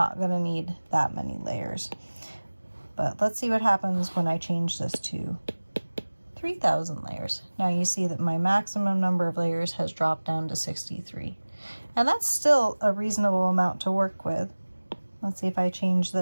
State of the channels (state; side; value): inverted; both; correlation -1.00